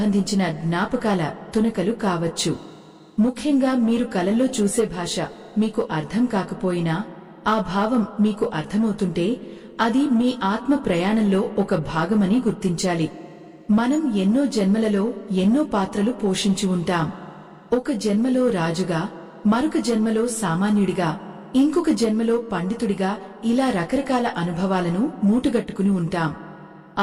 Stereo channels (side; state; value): both; identical; correlation 1.00